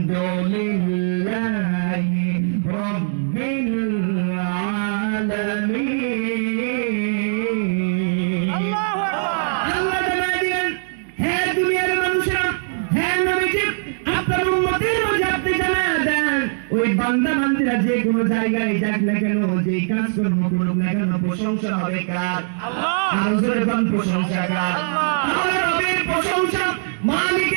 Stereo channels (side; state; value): left; silent; digital silence